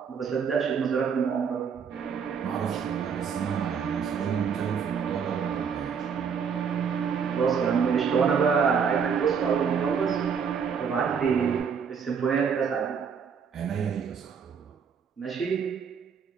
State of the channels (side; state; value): left; quieter; 6.6 dB